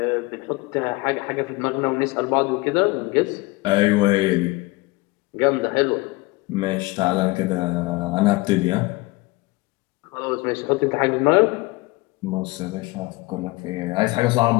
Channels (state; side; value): quieter; right; 22.8 dB